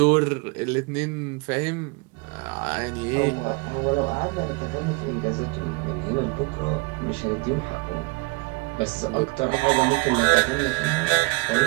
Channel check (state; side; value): quieter; left; 24.7 dB